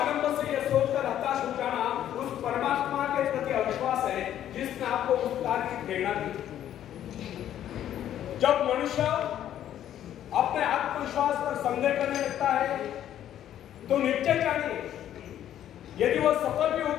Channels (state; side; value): quieter; right; 11.2 dB